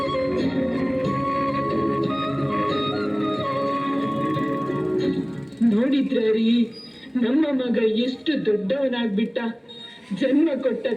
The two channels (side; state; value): both; identical; correlation 1.00